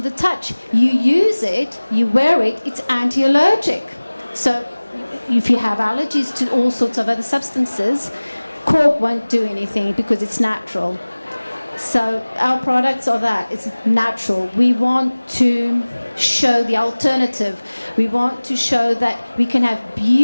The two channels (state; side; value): inverted; both; correlation -1.00